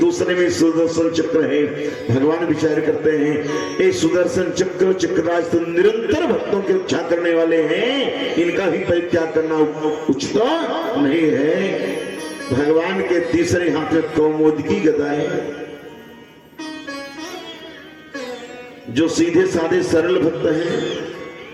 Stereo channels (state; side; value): identical; both; correlation 1.00